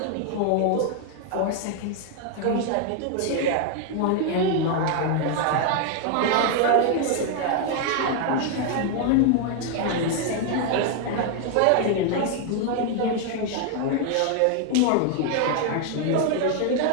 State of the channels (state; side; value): different; both; correlation 0.00